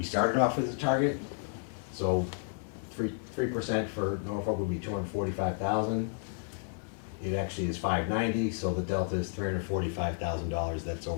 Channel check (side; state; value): right; silent; 56 dB below the other